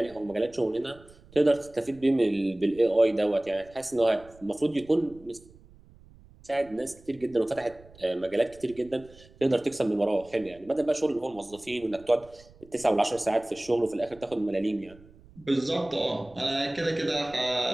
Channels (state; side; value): noise; right; rumble, 24 dB below the sound